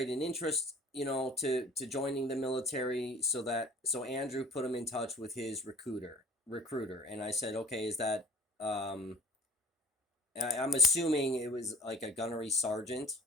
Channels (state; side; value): normal; both; correlation 0.45